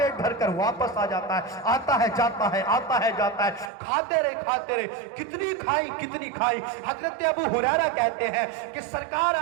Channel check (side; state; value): left; drops out; at 3.7 s